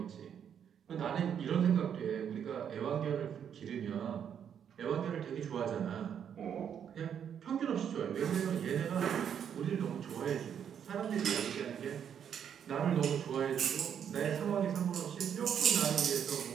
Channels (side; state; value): left; quieter; 8.4 dB